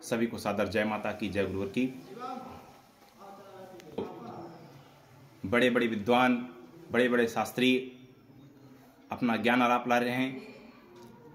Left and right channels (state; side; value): identical; both; correlation 1.00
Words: सभी को सादर जय माता की, जय गुरुवर की। बड़े बड़े विद्वान, बड़े बड़े शास्त्री अपना ज्ञान आलाप ला रहे हैं।